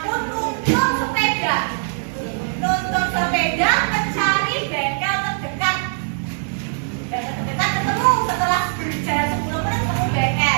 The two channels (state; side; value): silent; left; digital silence